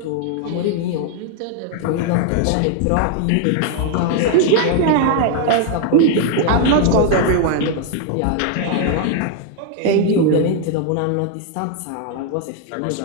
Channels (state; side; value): different; both; correlation 0.00